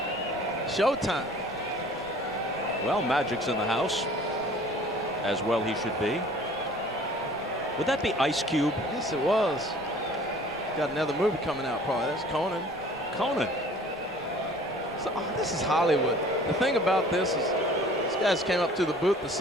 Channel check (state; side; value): normal; both; correlation 0.50